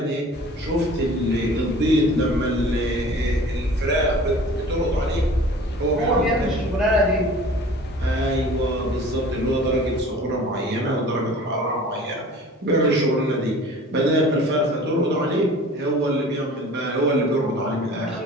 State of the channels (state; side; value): normal; both; correlation 0.44